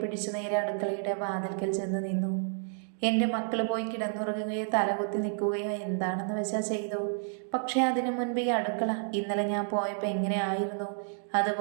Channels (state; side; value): silent; left; digital silence